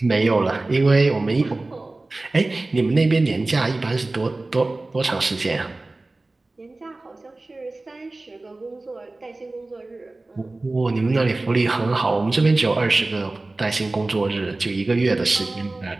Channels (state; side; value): quieter; left; 3.1 dB